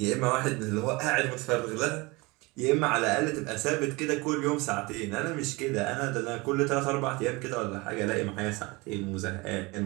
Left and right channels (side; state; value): left; quieter; 24.6 dB